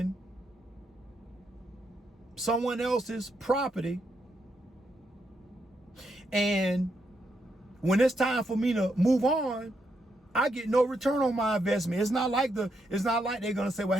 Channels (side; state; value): both; normal; correlation 0.79